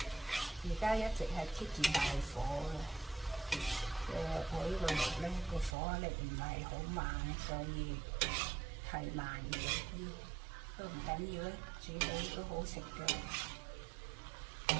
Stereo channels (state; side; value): drops out; left; at 5.8 s